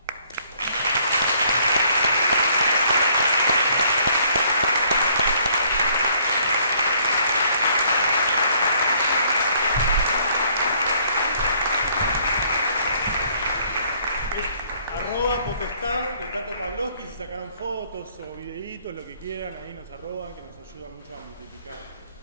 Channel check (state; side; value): inverted; both; correlation -0.64